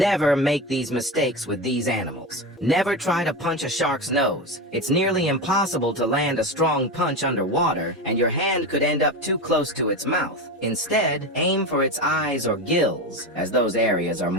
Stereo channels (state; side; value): normal; both; correlation 0.21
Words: make these mistakes with these animals. Never try to punch a shark's nose. It's nearly impossible to land a strong punch underwater, and your hand could end up too close to its mouth. Instead, aim for its eyes or gills, as those areas are